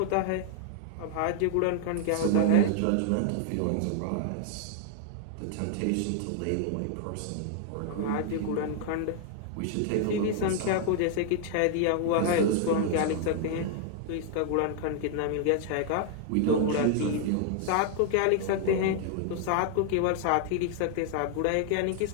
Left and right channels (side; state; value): both; different; correlation 0.00